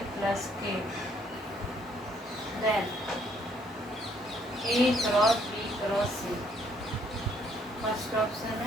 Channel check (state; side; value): normal; both; correlation 0.66